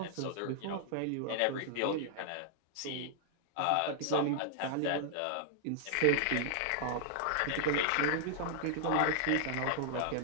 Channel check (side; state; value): both; different; correlation -0.01